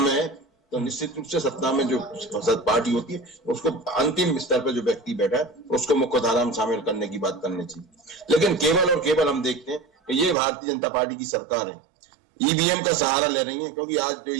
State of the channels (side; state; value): left; drops out; at 10.4 s